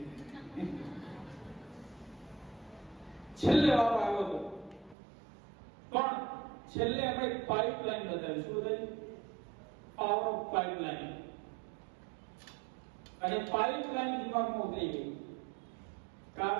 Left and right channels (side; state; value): left; drops out; at 5.0 s